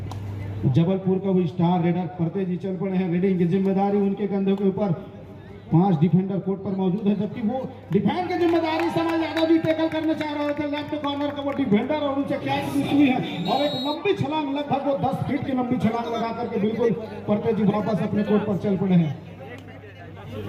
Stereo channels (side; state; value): both; identical; correlation 1.00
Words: जबलपुर का वो स्टार रेडर परते जी चल पड़े हैं। रीडिंग की जिम्मेदारी उनके कंधों के ऊपर 5 डिफेंडर कोर्ट पर मौजूद है, जबकि वो डिफेंड की जिम्मेदारी समय यादव जी टैकल करने चाह रहे थे। लेफ्ट कॉर्नर का वो डिफेंडर और उनसे कैच हुई है और एक लंबी छलांग, लगभग वो 10 फीट की लंबी छलांग लगा करके बिल्कुल परते जी वापस अपने कोर्ट पर चल पड़े हैं।